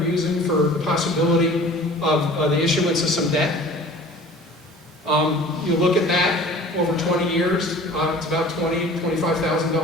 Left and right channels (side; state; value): both; normal; correlation 0.45